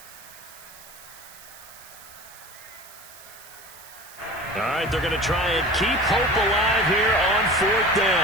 All right, they're going to try and keep hope alive here on 4th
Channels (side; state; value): right; noise; hiss, 19 dB below the sound